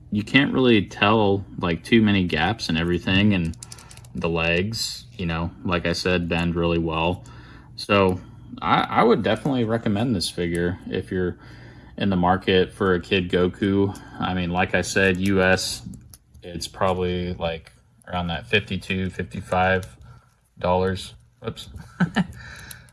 you can't really tell like too many gaps and everything, and the legs, you know, like I said, bend really well. So I would definitely recommend this figure if you're in the market for a Kid Goku. I mean, like I said, US, it's probably like around that $52, $55. Oops.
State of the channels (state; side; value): identical; both; correlation 1.00